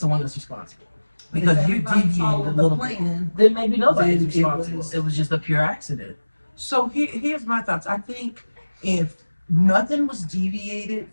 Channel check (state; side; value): inverted; both; correlation -1.00